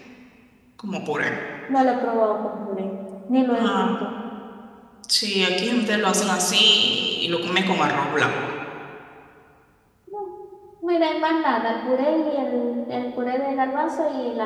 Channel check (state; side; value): identical; both; correlation 1.00